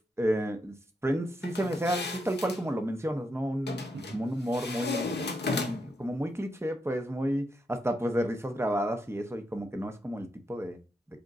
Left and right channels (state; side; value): normal; both; correlation 0.82